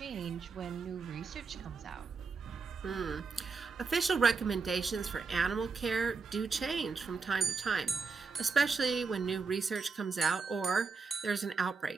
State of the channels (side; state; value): left; quieter; 4.8 dB